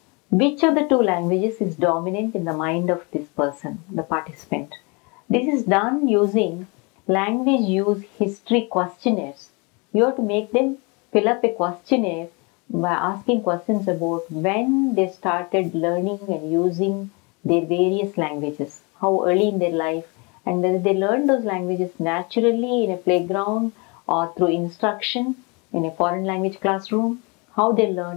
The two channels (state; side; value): quieter; right; 30.2 dB